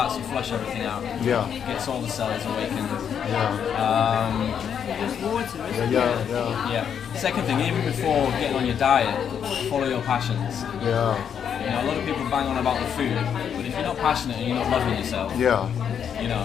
to flush everything out. Yeah. Gets all the cells awakened. Yeah. Just water, isn't it? Yeah. Second thing, even before getting on your diet, follow your passions. Yeah. You know, a lot of people bang on about the food, but if you're not passionate and you're not loving yourself, you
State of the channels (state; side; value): quieter; right; 8.1 dB